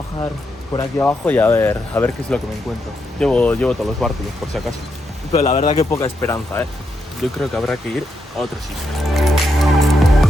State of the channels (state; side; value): normal; both; correlation 0.82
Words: por aquí abajo y a ver qué es lo que me encuentro. Llevo todos los bártulos por si acaso, pero la verdad que poca esperanza, yo creo que habrá que ir a otro sitio.